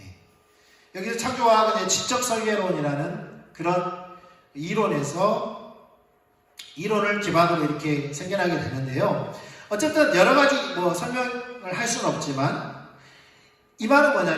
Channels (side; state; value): both; identical; correlation 1.00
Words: 여기서 창조과학은 지적설계론이라는 그런 이론을 기반으로 이렇게 생겨나게 되는데요. 어쨌든 여러 가지 설명을 할 수는 없지만 이 말은